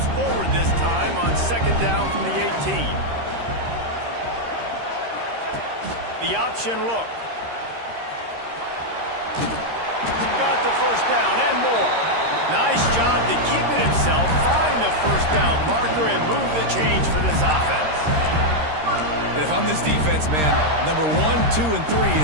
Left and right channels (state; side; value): late; left; 13 ms